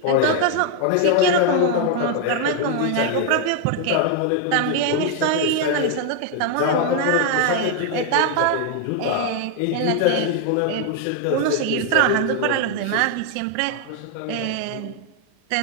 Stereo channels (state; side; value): different; both; correlation 0.01